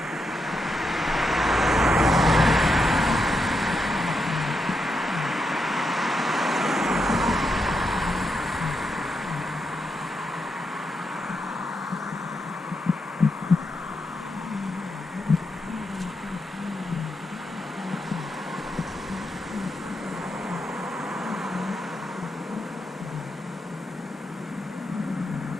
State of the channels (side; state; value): both; normal; correlation 0.83